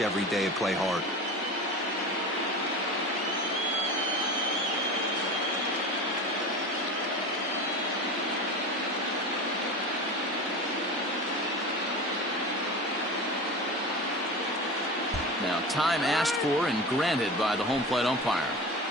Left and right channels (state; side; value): normal; both; correlation 0.30